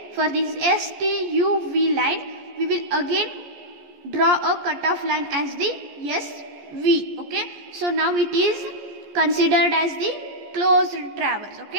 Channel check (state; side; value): late; left; 14 ms